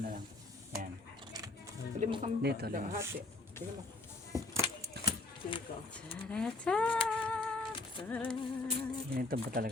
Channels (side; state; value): right; quieter; 3.0 dB